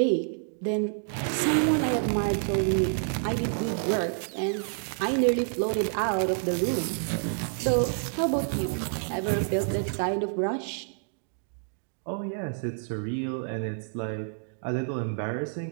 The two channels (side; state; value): left; silent; digital silence